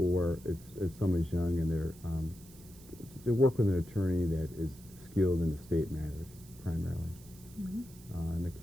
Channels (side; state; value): right; noise; hiss, 22 dB below the sound